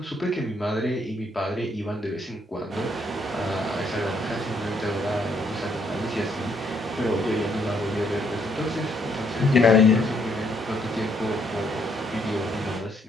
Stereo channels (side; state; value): both; normal; correlation 0.71